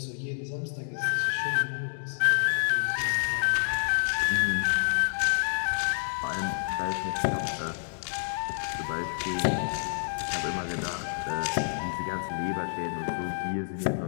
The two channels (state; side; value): silent; right; digital silence